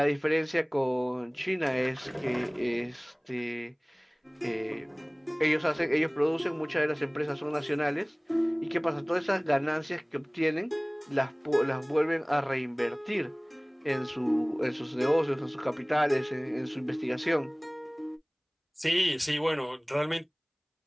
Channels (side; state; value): both; identical; correlation 1.00